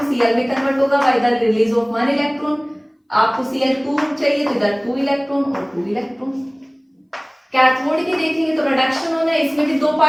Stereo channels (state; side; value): identical; both; correlation 1.00